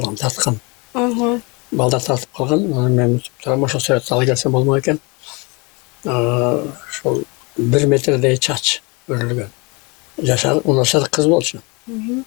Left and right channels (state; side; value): quieter; right; 28.7 dB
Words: тарткан. Балдар тартып калган, анан мен турам ошо сүрөттү ала келсем болмок экен. Ошол 1 метрдей чач өрүлгөн. Жашар, унашар кыз болчу.